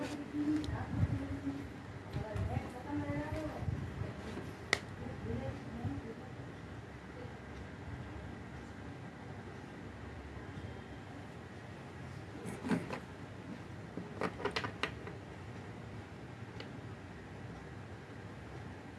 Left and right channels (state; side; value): identical; both; correlation 1.00